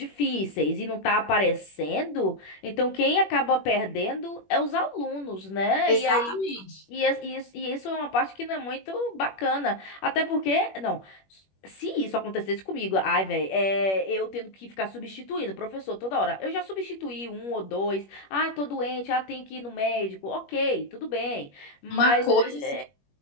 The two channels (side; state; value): right; late; 21 ms